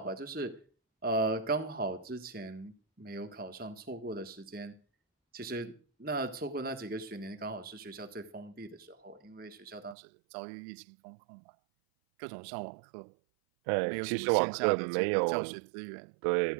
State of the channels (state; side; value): drops out; left; at 10.0 s